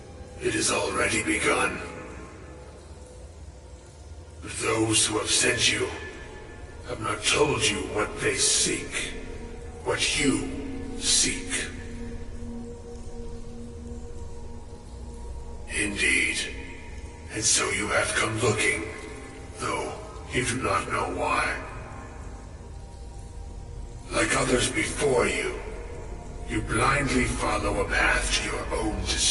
It has already begun. But those who have sent you have not told you what they seek, what you seek. Indeed. And so you have come looking, though you do not know why. Like others before you, you blindly follow a path to your own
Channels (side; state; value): both; identical; correlation 1.00